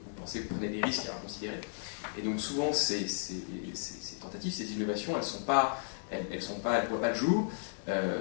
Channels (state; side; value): silent; right; 55 dB below the other